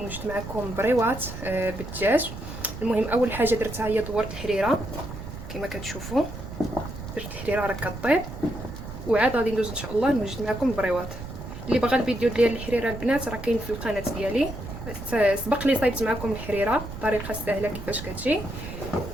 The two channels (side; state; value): right; noise; rumble, 10 dB below the sound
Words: معكم بريوات بالدجاج. المهم اول حاجه درتها هي دورت الحريره كما كتشوفوا، درت الحريره راه كطيب، وعاد غادي ندوز ان شاء الله نوجد معكم البريوات. اللي بغى الفيديو ديال الحريره البنات راه كاين في القناه ديالي، سبق لي صايبت معكم الحريره الطريقه السهله كيفاش كتجي.